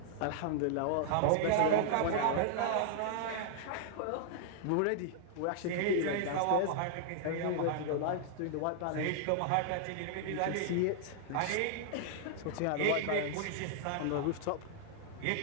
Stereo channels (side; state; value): both; different; correlation -0.01